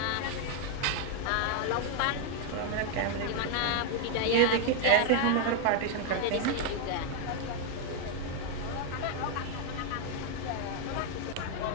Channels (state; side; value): different; both; correlation 0.00